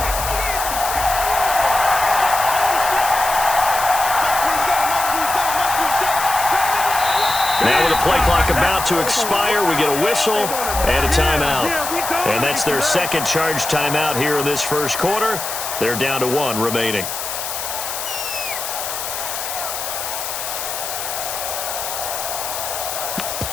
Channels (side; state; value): left; noise; hiss, 5 dB below the sound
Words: Now with the play clock about to expire, we get a whistle and a timeout. And that's their second charge timeout here in this first quarter. They're down to 1 remaining.